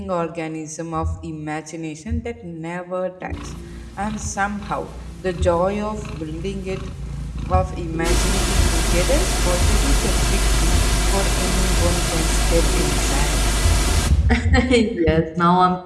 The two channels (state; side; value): identical; both; correlation 1.00